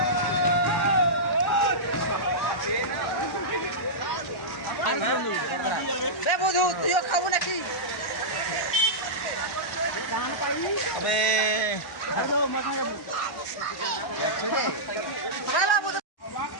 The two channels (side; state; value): right; late; 1.1 ms